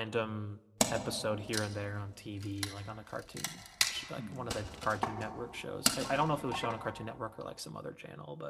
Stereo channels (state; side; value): identical; both; correlation 1.00